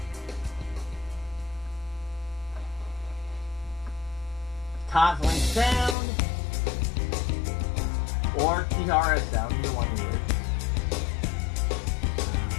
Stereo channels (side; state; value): right; drops out; at 6.0 s